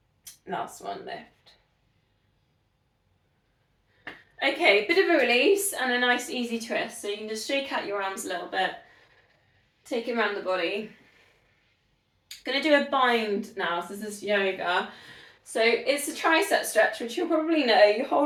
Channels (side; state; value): both; identical; correlation 1.00